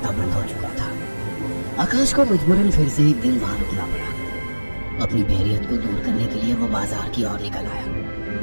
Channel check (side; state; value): both; inverted; correlation -1.00